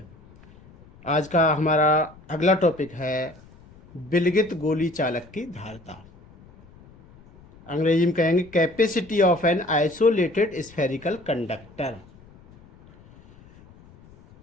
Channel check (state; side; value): noise; left; rumble, 24 dB below the sound